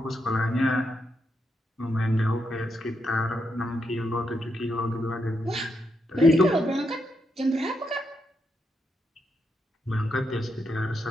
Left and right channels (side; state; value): both; normal; correlation 0.81